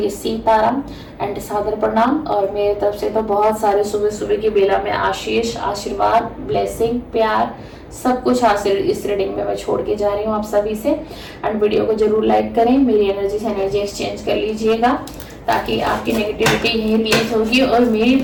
सीताराम एंड सादर प्रणाम, और मेरे तरफ से तो बहुत सारे सुबह सुबह की बेला में आशीष, आशीर्वाद, ब्लेसिंग, प्यार, सब कुछ हासिल इस रीडिंग में मैं छोड़ के जा रही हूँ आप सभी से। एंड वीडियो को जरूर लाइक करें, मेरी एनर्जी से एनर्जी एक्सचेंज कर लीजिएगा ताकि आपकी नेगेटिविटी यही रिलीज होगी और मेरी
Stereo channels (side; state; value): both; identical; correlation 1.00